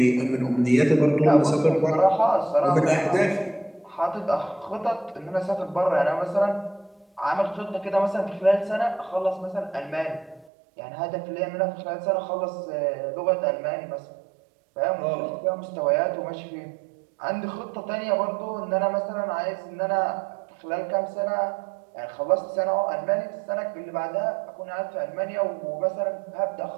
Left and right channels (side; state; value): left; drops out; at 10.5 s